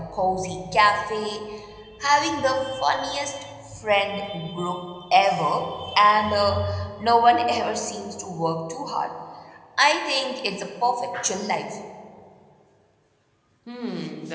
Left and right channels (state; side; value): identical; both; correlation 1.00